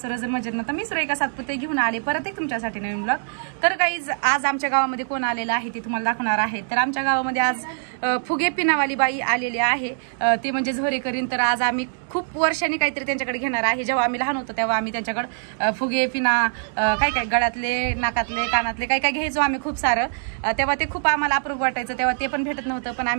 मजेत ना? तर मी सुरेखा सातपुते घेऊन आले परत एक तुमच्यासाठी नवीन ब्लॉग. तर गाईज, आज आमच्या गावामध्ये कोण आलेलं आहे ते तुम्हाला दाखवणार आहे. तर आमच्या गावामध्ये आज फुगे पिनावाली बाई आलेली आहे, ते म्हणजे झोरेकरीन. तर आज आम्ही खूप वर्षांनी काहीतरी त्यांच्याकडे घेणार आहे. जेव्हा आम्ही लहान होतो तेव्हा आम्ही त्यांच्याकडे फुगे पिना काय काय गळ्यातले, नाकातले, कानातले काय काय घ्यायचो आम्ही खूप सारं. तेव्हा ते खूप आम्हाला अप्रूप वाटायचं, तेव्हा ते पण भेटत नव्हतं, पण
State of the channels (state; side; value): silent; left; 58 dB below the other